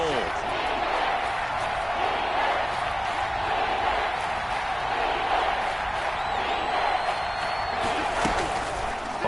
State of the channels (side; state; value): both; identical; correlation 1.00